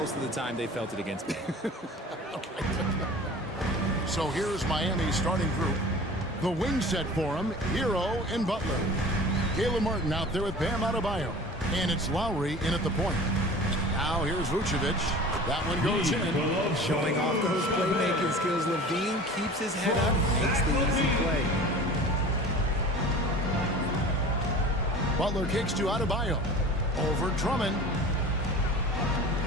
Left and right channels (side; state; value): both; normal; correlation 0.40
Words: of the time they felt it against me. So here's Miami's starting group. The wing set for him, Hero and Butler. Caleb Martin out there with Bam Adebayo. And it's Lowry in at the point. Now here's Vucevic. That one goes in. Showing off those playmaking skills. Levine keeps his head up, makes the easy play. Butler kicks to Adebayo. Over Drummond.